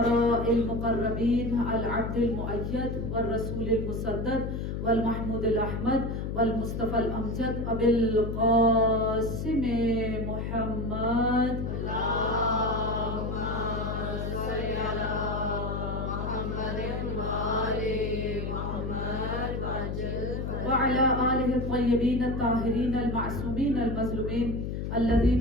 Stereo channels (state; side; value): noise; left; hum, 3 dB below the sound